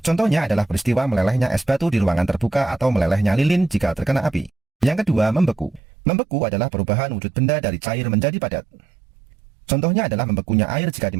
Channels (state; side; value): drops out; left; at 5.8 s